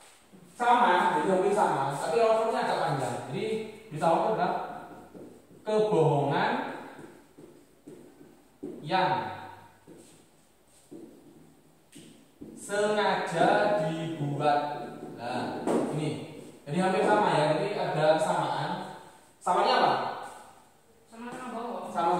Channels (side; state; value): both; identical; correlation 1.00